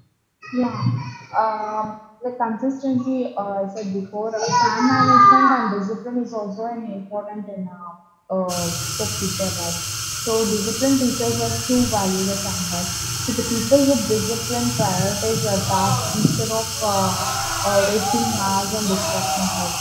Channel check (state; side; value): identical; both; correlation 1.00